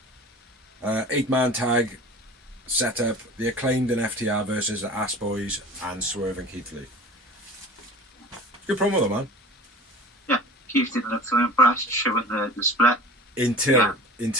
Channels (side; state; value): both; normal; correlation 0.39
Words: 8-man tag setup, the Acclaimed and FTR versus the Ass Boys and Swerve and Keith Lee. Good promo though, man. Yeah, Keith didn't look so impressed showing the split.